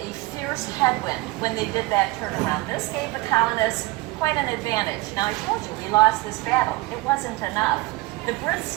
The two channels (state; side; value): quieter; left; 20.4 dB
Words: fierce headwind when they did that turnaround. This gave the colonists quite an advantage. Now, I told you we lost this battle. It wasn't enough. The Brits